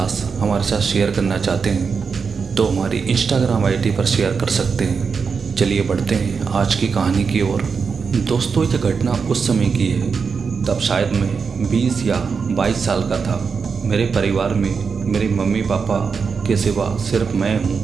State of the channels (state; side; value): quieter; left; 5.6 dB